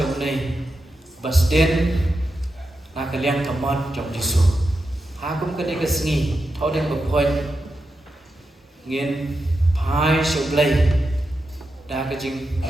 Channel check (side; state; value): both; normal; correlation 0.88